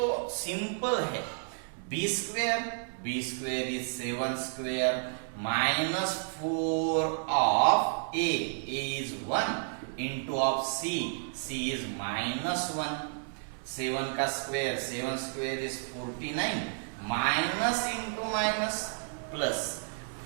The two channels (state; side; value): silent; left; 57 dB below the other